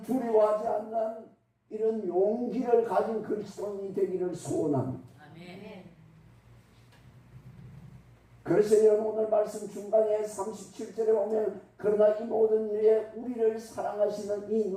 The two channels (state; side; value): identical; both; correlation 1.00